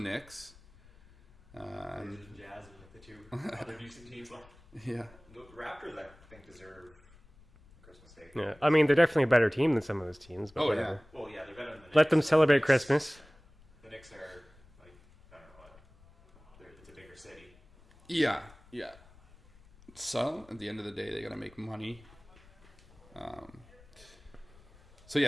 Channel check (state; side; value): noise; left; rumble, 25 dB below the sound